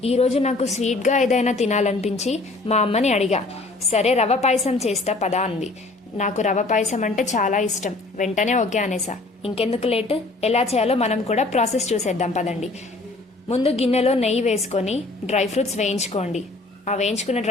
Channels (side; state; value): right; quieter; 3.2 dB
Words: ఈరోజు నాకు స్వీట్గా ఏదైనా తినాలనిపించి మా అమ్మని అడిగా. సరే రవ పాయసం చేస్తా పదా అంది. నాకు రవ పాయసం అంటే చాలా ఇష్టం. వెంటనే ఓకే అనేసా. ఇంకెందుకు లేట్, ఎలా చేయాలో మనం కూడా ప్రాసెస్ చూసేద్దాం పదండి. ముందు గిన్నెలో నెయ్యి వేసుకొని డ్రై ఫ్రూట్స్ వేయించుకోండి. ఆ వేయించుకున్న